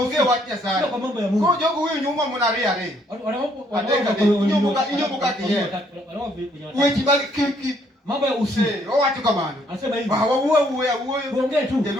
wacha sio sana. kwa mambo ya Mungu. Kwa jogo huyu nyuma mnaria re. Kweji makiki. Mambo ya usi. O watu kamano. Anasema hivi. Ba uwe. Tuongee tu.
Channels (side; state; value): both; normal; correlation 0.67